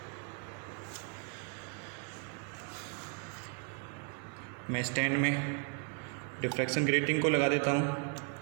मैं स्टैंड में डिफ्रैक्शन ग्रेटिंग को लगा देता हूँ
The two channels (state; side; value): quieter; left; 36.6 dB